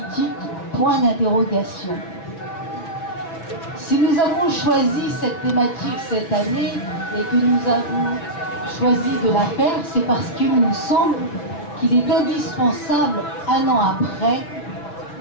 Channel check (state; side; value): late; right; 6.0 ms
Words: point d'interrogation. Si nous avons choisi cette thématique cette année et que nous avons choisi de la faire, c'est parce qu'il nous semble qu'il est indispensable, un an après,